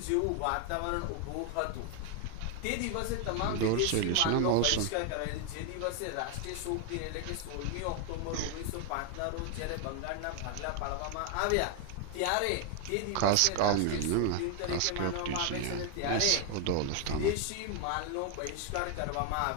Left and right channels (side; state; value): both; different; correlation 0.01